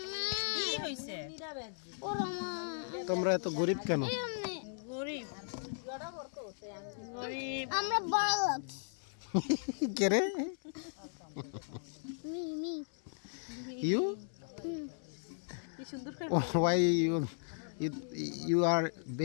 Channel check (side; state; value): right; silent; 54 dB below the other